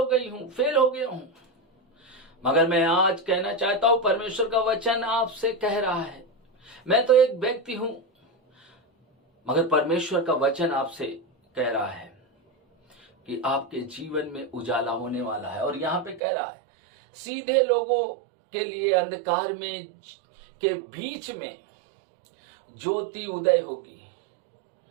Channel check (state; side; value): drops out; left; at 16.2 s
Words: गया हूं। मगर मैं आज कहना चाहता हूं, परमेश्वर का वचन आपसे कह रहा है, मैं तो एक व्यक्ति हूं, मगर परमेश्वर का वचन आपसे कह रहा है कि आपके जीवन में उजाला होने वाला है। और यहां पे कह रहा है सीधे लोगों के लिए अंधकार में के बीच में ज्योति उदय होगी।